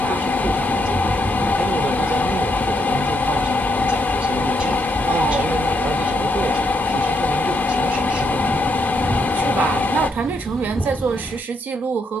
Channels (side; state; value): both; normal; correlation 0.77